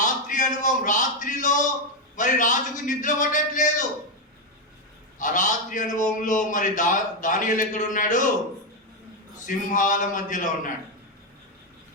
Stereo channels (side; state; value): both; normal; correlation 0.04